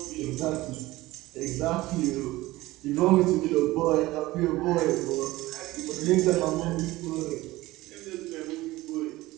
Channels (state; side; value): quieter; left; 18.4 dB